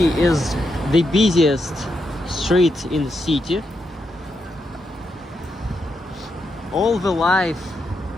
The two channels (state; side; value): normal; both; correlation 0.83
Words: is the busiest street in the city. All the life